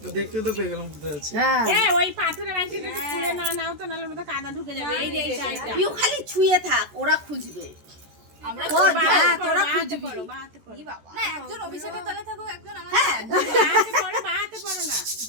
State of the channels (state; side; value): late; left; 14 ms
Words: দেখতে তো পেয়ে গেলাম কোথায় আছে। হ্যাঁ ওই পাথরের আংটিটা একটু খুলে নাও তো, নাহলে ওটা কাদা ঢুকে যাবে। এই যে এইটা তুই খালি ছুঁয়ে থাক, ওরা খুঁজবে। আমরা তোরা খুঁজবি বাহাতে পড়ো। না একজন অভিষেকের তলে থাকো, একজন আমাদের। হ্যাঁ বাহাতে পড়ো, বাহাতে পড়ো না,